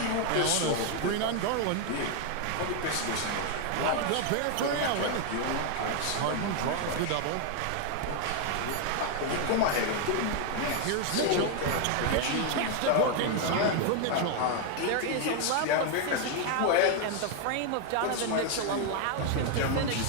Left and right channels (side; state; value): both; different; correlation 0.00